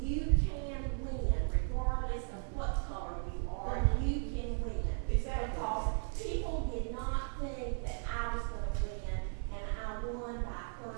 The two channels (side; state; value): left; silent; 54 dB below the other